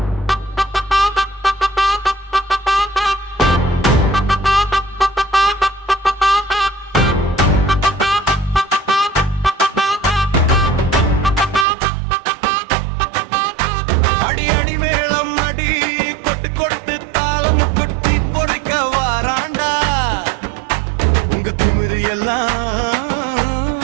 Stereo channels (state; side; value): drops out; left; at 11.7 s